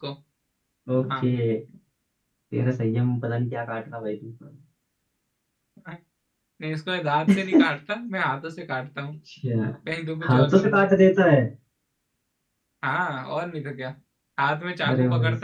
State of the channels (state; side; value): identical; both; correlation 1.00